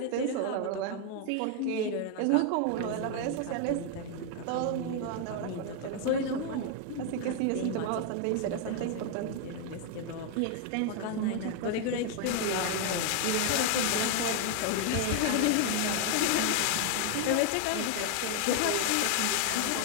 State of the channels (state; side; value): different; both; correlation 0.00